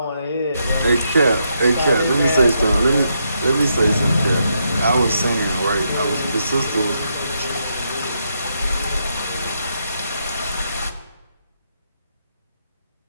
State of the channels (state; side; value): inverted; both; correlation -0.79